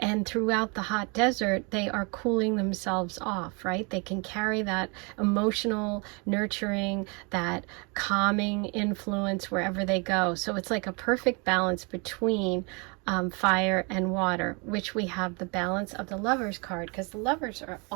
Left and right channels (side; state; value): left; quieter; 31.8 dB